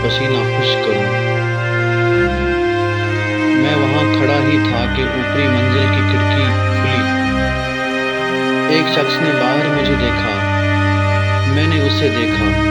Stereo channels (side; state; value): both; identical; correlation 1.00